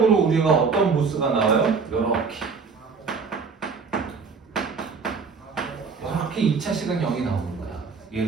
우리가 어떤 보스가 나와요? 이렇게 2차식은 0이 나오는 거야.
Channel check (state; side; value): quieter; left; 5.2 dB